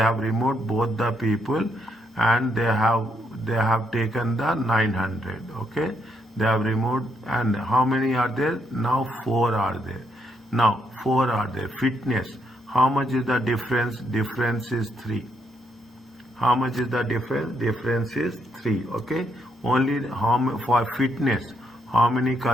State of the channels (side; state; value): both; normal; correlation 0.76